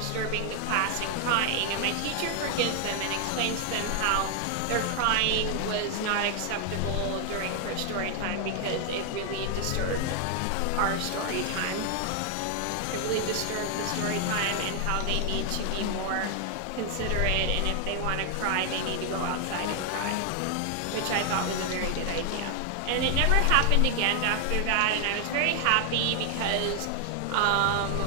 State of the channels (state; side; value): different; both; correlation 0.00